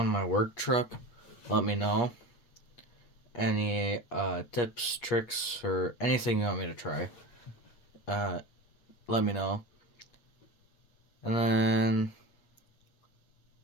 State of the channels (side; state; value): right; late; 8.4 ms